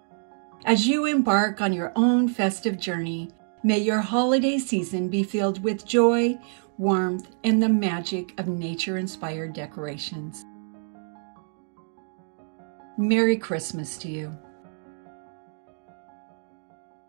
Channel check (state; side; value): silent; left; digital silence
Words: As you embark on your own festive journey, may your holiday season be filled with joy, warmth, and the magic of nature-inspired decorations. Merry Christmas to you.